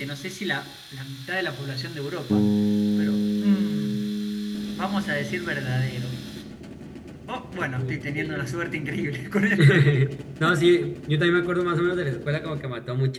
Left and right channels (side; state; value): both; identical; correlation 1.00